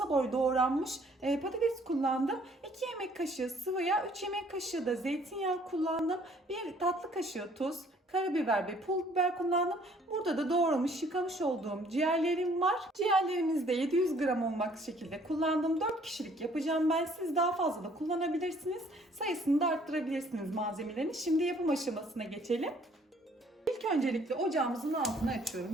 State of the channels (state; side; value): normal; both; correlation 0.60